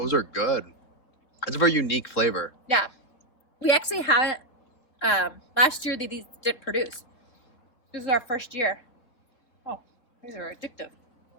are good. It's a very unique flavor. Yeah. We actually haven't, last year these didn't produce. This is our first year. Oh, these are addictive.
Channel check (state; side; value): late; right; 3.5 ms